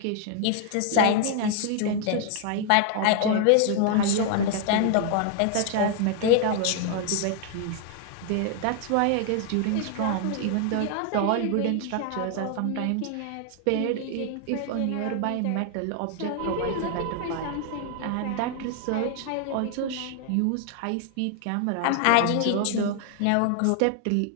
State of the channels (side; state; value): both; different; correlation 0.00